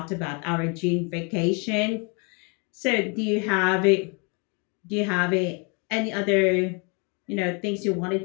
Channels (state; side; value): quieter; right; 33.7 dB